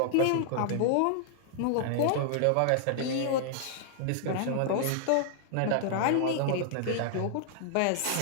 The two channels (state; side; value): different; both; correlation -0.01